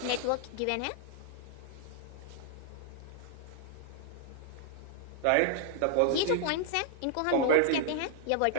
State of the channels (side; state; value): both; different; correlation -0.01